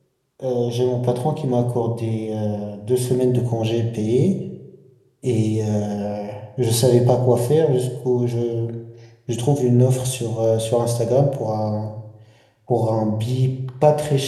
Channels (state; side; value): identical; both; correlation 1.00